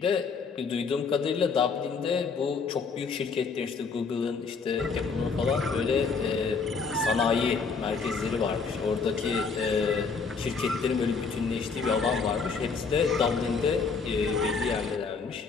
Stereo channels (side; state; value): right; quieter; 5.0 dB